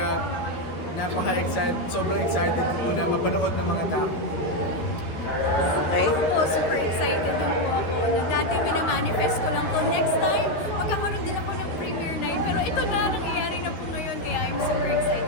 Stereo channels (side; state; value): right; late; 13 ms